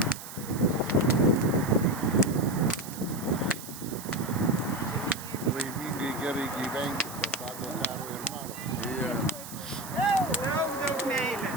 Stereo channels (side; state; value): right; noise; hiss, 12 dB below the sound